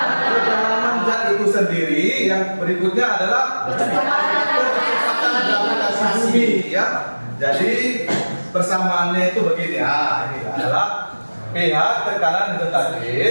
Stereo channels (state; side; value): inverted; both; correlation -1.00